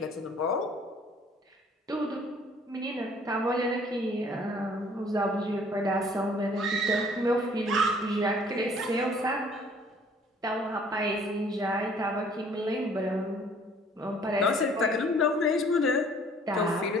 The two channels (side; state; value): both; normal; correlation 0.57